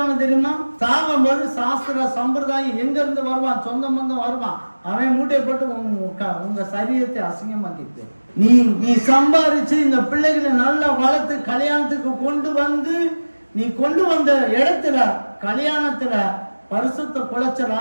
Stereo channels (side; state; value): both; inverted; correlation -1.00